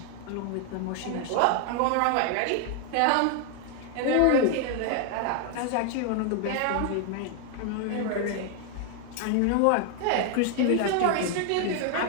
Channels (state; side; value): different; both; correlation 0.00